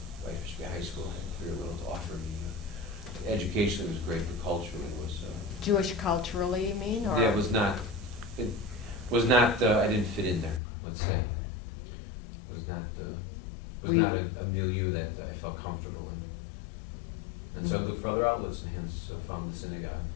Whitefish Bay High School had very little to offer me. Educationally it was great, but culturally it was, Jewish culturally, you mean, or? yeah, it was not, I didn't fit in there, let's say. It was not Were you- a milieu that I felt comfortable in. And so I looked for other outlets and hence found the synagogue,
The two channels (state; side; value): drops out; right; at 10.6 s